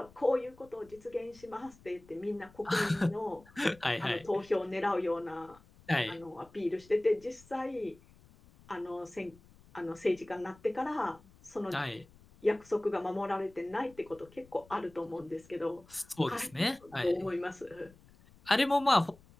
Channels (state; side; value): noise; left; rumble, 25 dB below the sound